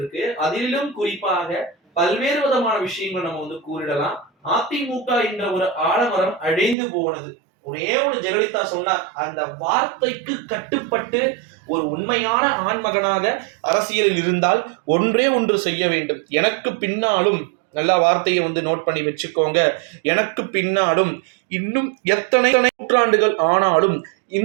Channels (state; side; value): drops out; left; at 6.8 s